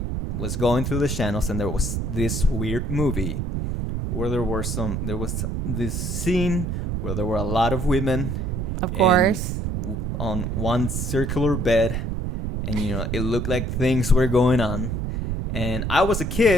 was going through the channels, and there was this weird movie where there was this scene where there were a lot of women, Of course. on one circular bed, and it looked like things were going on. And I was a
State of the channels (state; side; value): noise; right; rumble, 1 dB below the sound